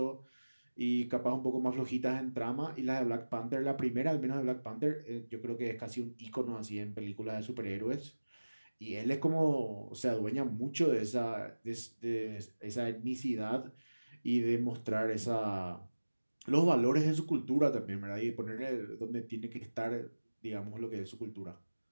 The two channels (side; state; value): both; inverted; correlation -1.00